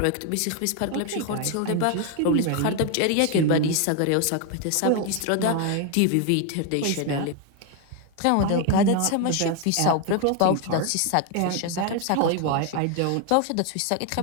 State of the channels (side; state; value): both; different; correlation 0.01